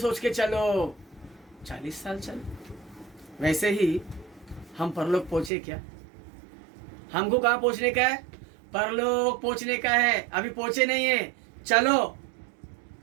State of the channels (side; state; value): left; drops out; at 5.5 s